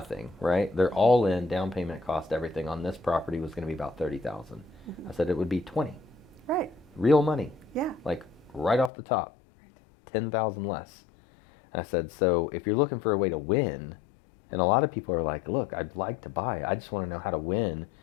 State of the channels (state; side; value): drops out; right; at 8.9 s